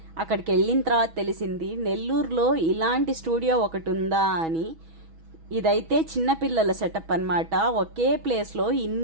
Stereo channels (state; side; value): late; left; 6.2 ms